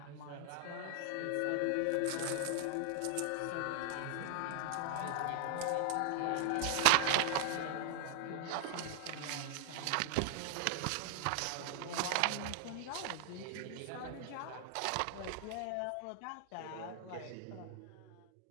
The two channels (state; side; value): different; both; correlation 0.00